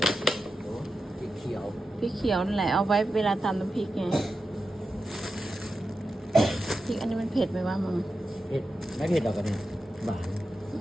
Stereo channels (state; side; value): normal; both; correlation 0.90